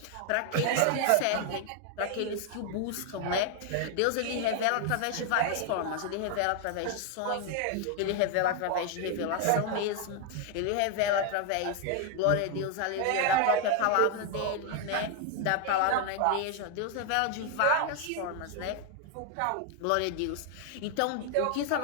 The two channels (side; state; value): both; different; correlation 0.00